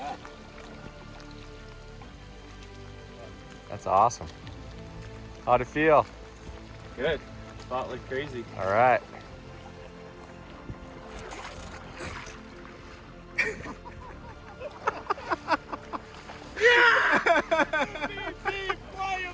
That's awesome. How'd it feel? Good. Fought like crazy. All right. Big fly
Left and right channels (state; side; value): identical; both; correlation 1.00